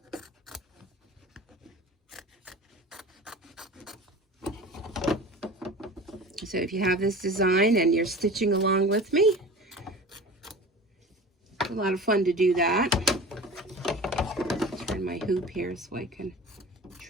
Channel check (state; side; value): normal; both; correlation 0.37